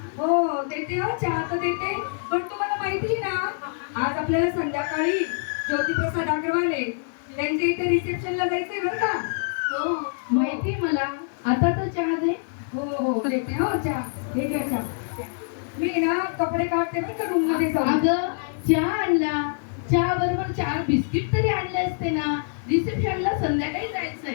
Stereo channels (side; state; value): right; silent; digital silence